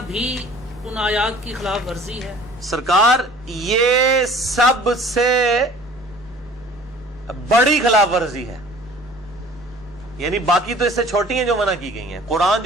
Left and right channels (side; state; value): both; normal; correlation 0.48